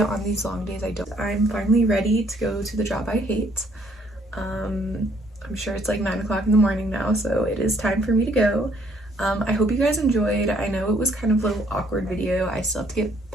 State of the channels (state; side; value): normal; both; correlation 0.66